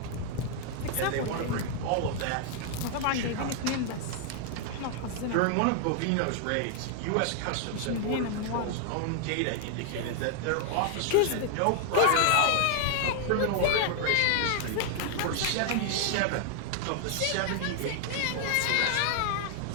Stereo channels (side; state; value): both; different; correlation 0.00